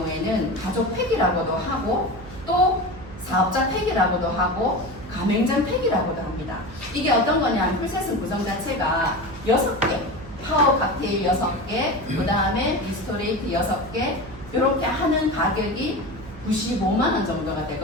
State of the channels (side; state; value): right; noise; hum, 16 dB below the sound